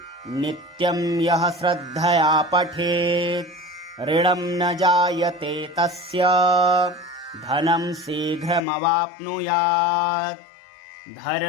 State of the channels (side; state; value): right; drops out; at 8.6 s